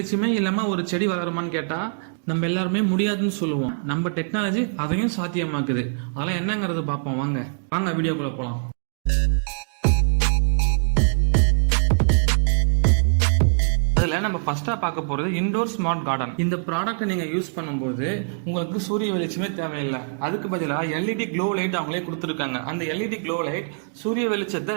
இல்லாமல் ஒரு செடி வளருமான்னு கேட்டால் நம்ம எல்லாருமே முடியாதுன்னு சொல்லுவோம். நம்ம டெக்னாலஜி அதையும் சாத்தியமாக்குது. அதெல்லாம் என்னங்கிறது பார்ப்போம். வாங்க வீடியோக்குள்ளே போகலாம். அதில் நம்ம ஃபர்ஸ்டா பார்க்க போறது இன்டோர் ஸ்மார்ட் கார்டன். இந்த ப்ராடக்ட் நீங்க யூஸ் பண்ணும்போது உங்களுக்கு சூரிய வெளிச்சமே தேவையில்லை. அதுக்கு பதிலாக எல்இடி க்ளோ லைட் அவங்களே கொடுத்துருக்காங்க. அந்த எல்இடி க்ளோ லைட் சூரிய வெளிச்சத்தை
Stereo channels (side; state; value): left; silent; digital silence